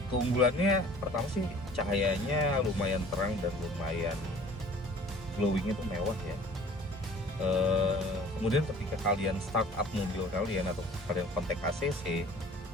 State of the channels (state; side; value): normal; both; correlation 0.49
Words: keunggulannya pertama sih cahayanya lumayan terang dan lumayan glowingnya tuh mewah ya. Kemudian ketika kalian start up mobil kalian atau kalian kontak ACC,